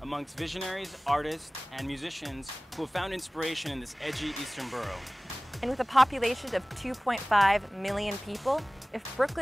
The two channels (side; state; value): both; normal; correlation 0.98